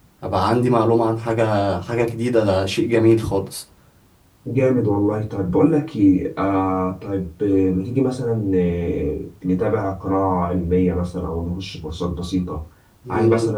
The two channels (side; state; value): both; identical; correlation 1.00